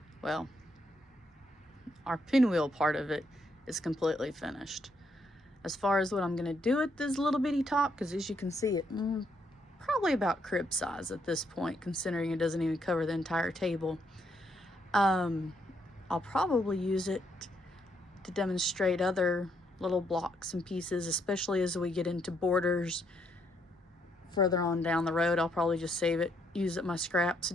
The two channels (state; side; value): normal; both; correlation 0.74